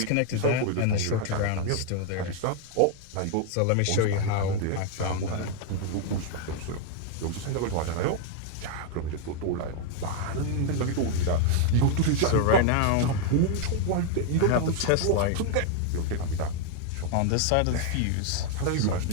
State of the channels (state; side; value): different; both; correlation 0.00